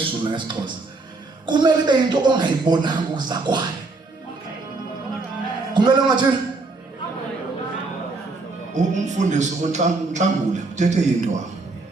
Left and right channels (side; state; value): left; quieter; 3.6 dB